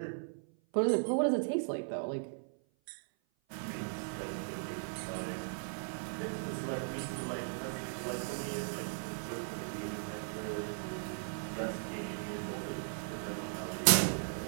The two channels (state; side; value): silent; left; 53 dB below the other